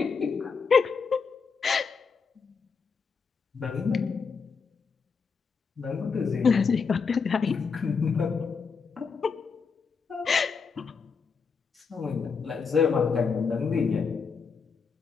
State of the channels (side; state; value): right; quieter; 5.4 dB